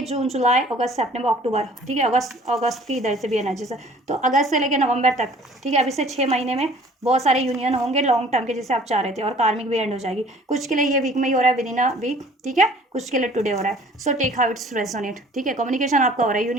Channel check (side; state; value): both; normal; correlation 0.52